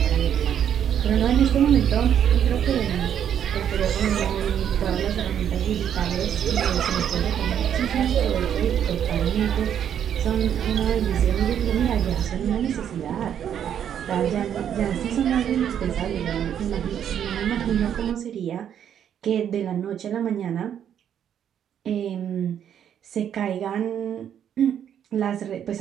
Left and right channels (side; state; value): left; quieter; 9.3 dB